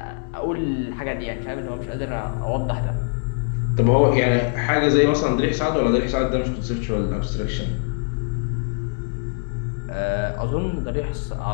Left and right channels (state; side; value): silent; right; 63 dB below the other